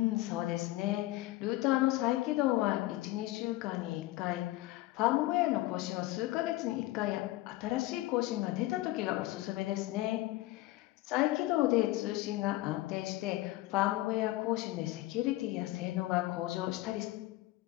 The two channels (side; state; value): right; quieter; 17.9 dB